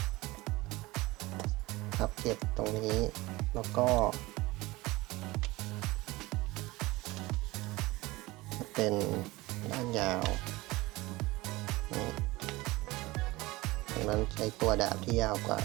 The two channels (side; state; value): left; quieter; 20.5 dB